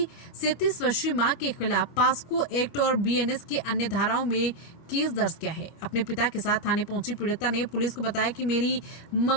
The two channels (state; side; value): late; right; 24 ms